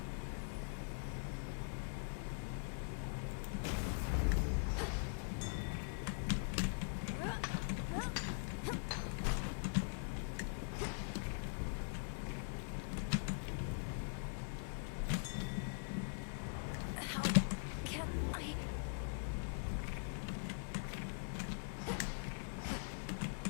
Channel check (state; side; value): silent; right; digital silence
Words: How can I...